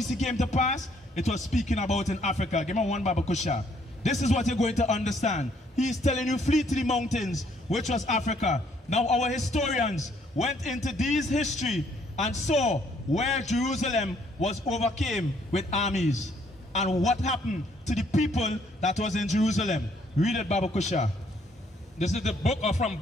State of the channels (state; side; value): normal; both; correlation 0.66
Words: came to pass, it was speaking about in Africa. Give me one Baba Kusha. This is what you're going to understand. He is telling you flee to the mountains, which was Africa. Now our historians went into these history and saw where Jerusalem was overcame with armies. And what happened to the people that was in Jerusalem. Read it, Baba Kusha. This is the book of From